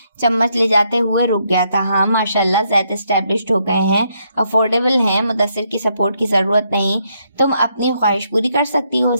چمچ لے جاتے ہوئے رک گیا تھا۔ ہاں ماشاءاللہ، زید اسٹیبلشڈ ہو گئے ہیں، افورڈیبل ہیں، مدثر کی سپورٹ کی ضرورت نہیں، تم اپنی خواہش پوری کر سکتی ہو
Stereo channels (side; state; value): both; inverted; correlation -0.76